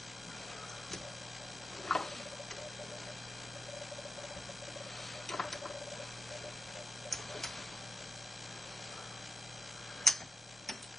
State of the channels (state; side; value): normal; both; correlation 0.92